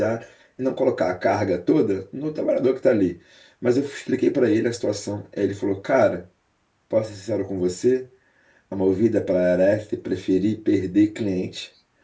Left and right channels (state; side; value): identical; both; correlation 1.00